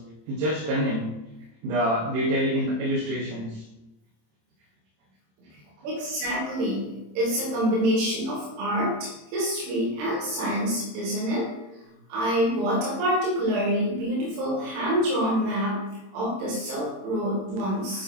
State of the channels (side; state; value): left; late; 27 ms